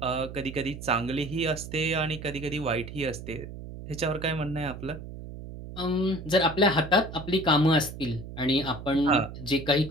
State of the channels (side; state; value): right; noise; hum, 11 dB below the sound